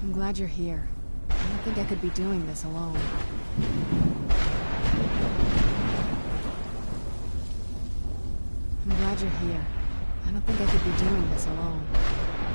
I'm glad you're here. I don't think I could be doing this alone. I'm glad you're here. I don't think I could be doing this alone.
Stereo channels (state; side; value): inverted; both; correlation -1.00